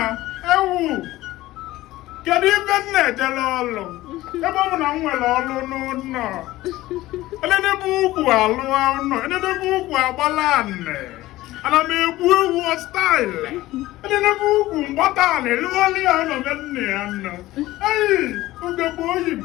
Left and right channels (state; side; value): quieter; right; 16.9 dB